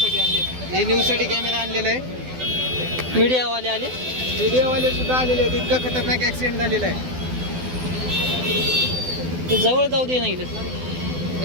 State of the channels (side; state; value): left; late; 12 ms